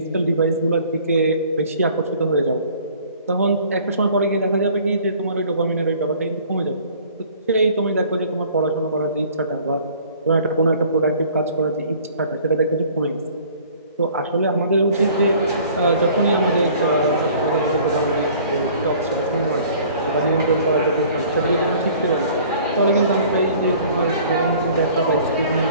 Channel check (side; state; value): both; inverted; correlation -0.52